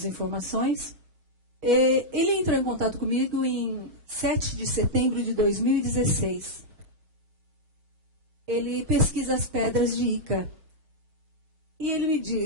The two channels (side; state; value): left; late; 6.2 ms